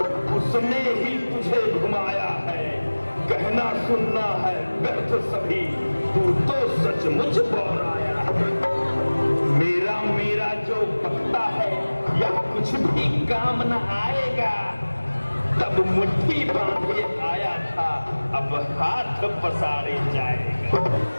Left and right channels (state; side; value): inverted; both; correlation -1.00